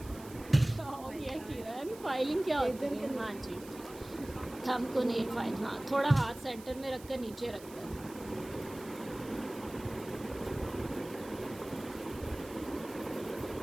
हो गया किरण, फाइलिंग क्या होती है? हाँ जी, थंब को नेल फाइल, हाँ थोड़ा हाथ सेंटर में रखकर नीचे रखकर।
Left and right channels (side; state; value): right; noise; hiss, 19 dB below the sound